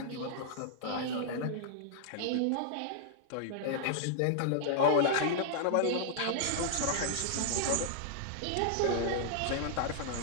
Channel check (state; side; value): different; both; correlation -0.01